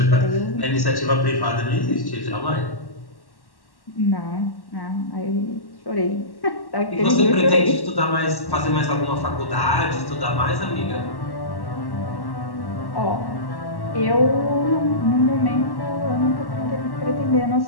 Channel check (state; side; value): late; right; 1.1 ms